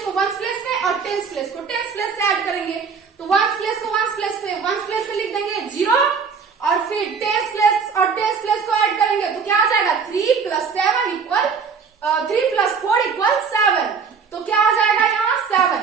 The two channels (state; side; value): quieter; left; 5.8 dB